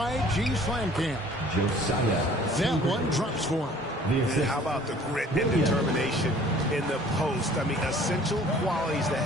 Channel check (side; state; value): both; normal; correlation 0.52